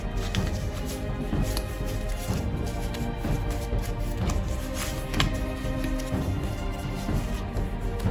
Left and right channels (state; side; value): identical; both; correlation 1.00